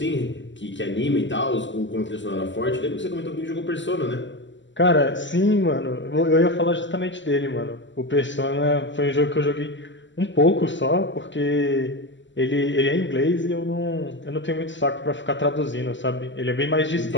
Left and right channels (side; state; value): right; late; 0.54 ms